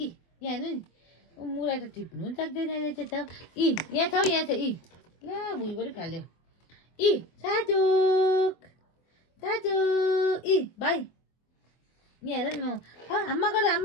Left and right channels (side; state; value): right; late; 24 ms